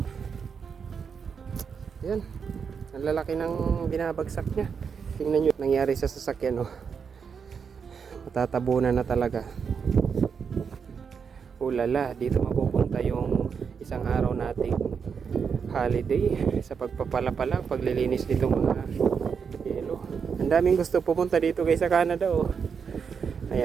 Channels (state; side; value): quieter; left; 6.3 dB